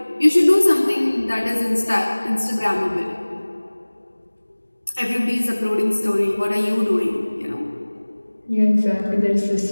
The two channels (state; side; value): inverted; both; correlation -1.00